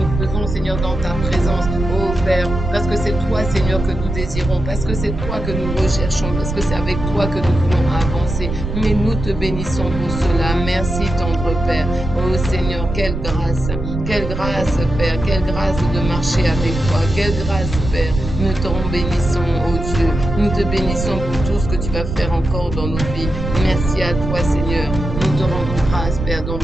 faisons, Seigneur, dans ta présence, oh Père, parce que c'est toi, Seigneur, que nous désirons, parce que c'est toi que nous recherchons, parce que c'est avec toi que nous voulons avancer. Mais nous te bénissons pour cela. Merci, tendre Père. Oh Seigneur, quelle grâce, Père, quelle grâce de marcher avec toi, quelle grâce, Père. Nous t'en bénissons, oh Dieu. Nous te bénissons pour tout ce que tu vas faire encore dans nos vies. Merci à toi, Seigneur. Nous te rendons grâce, Père, dans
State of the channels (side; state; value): right; noise; rumble, 5 dB below the sound